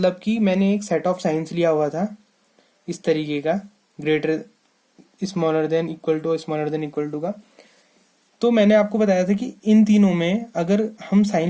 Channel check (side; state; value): both; identical; correlation 1.00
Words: कि मैंने एक सेट ऑफ साइंस लिया हुआ था इस तरीके का, greater smaller than equal to, smaller than equal to का। तो मैंने आपको बताया था कि इन तीनों में अगर हम